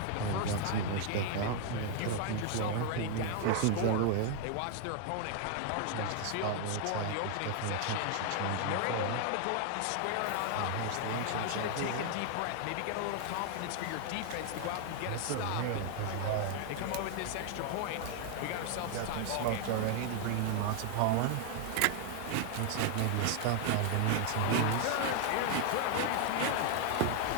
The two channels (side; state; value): both; different; correlation 0.00